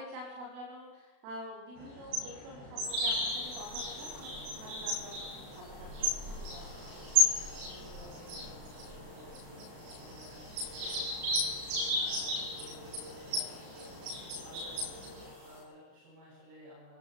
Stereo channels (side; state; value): left; late; 36 ms